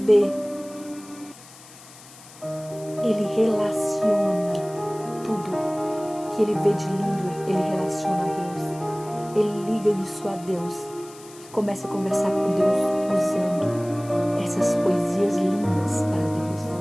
ele relaciona tudo que ele vê de lindo, ele relaciona a Deus. Ele liga isso a Deus e começa a conversar com Deus usando essas poesias lindas para Deus.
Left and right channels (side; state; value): left; noise; hiss, 20 dB below the sound